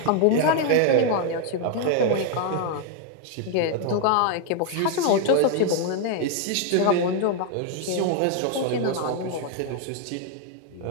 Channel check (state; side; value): different; both; correlation 0.00